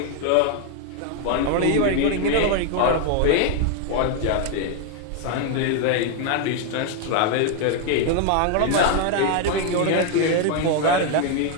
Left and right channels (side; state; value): both; different; correlation 0.01